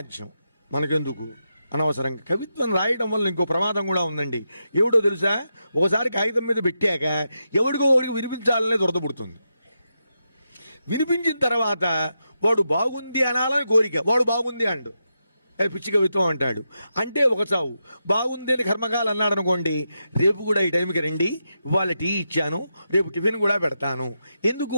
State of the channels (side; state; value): both; inverted; correlation -0.86